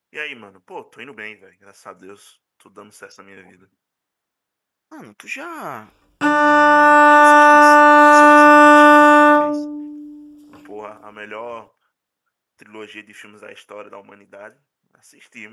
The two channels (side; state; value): both; identical; correlation 1.00